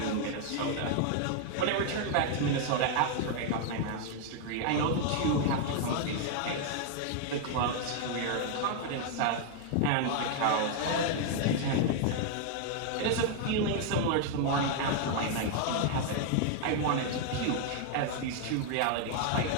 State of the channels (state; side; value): different; both; correlation 0.00